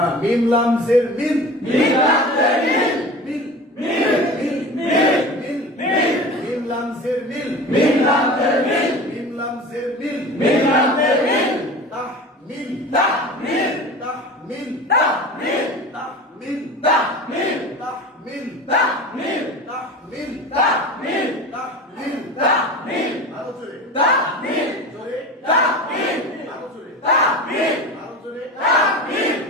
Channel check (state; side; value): normal; both; correlation 0.34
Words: মিম লাম জের মিল মিম লাম জের মিল মিল মিল মিল মিল মিম লাম জের মিল মিম লাম জের মিল মিম লাম জের মিল মিম লাম জের মিল তাহমিল তাহমিল তাহমিল তাহমিল তাহমিল তাহমিল তাহমিল তাহমিল তাহমিল তাহমিল তাহমিল তাহমিল আরো জোরে তাহমিল জোরে তাহমিল আরো জোরে তাহমিল আরো জোরে তাহমিল